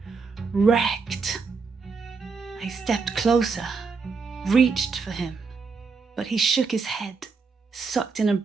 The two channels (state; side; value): quieter; left; 4.8 dB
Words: wrecked. I stepped closer, reached for him, but he shook his head, sucked in a